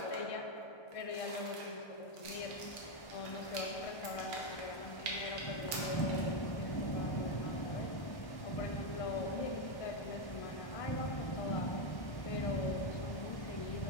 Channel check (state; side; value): late; right; 1.3 ms